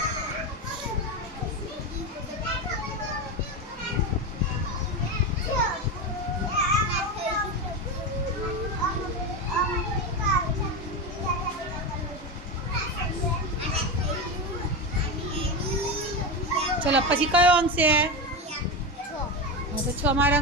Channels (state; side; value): normal; both; correlation 0.17